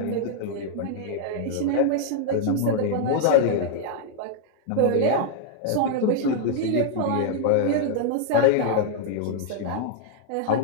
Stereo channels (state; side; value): different; both; correlation -0.01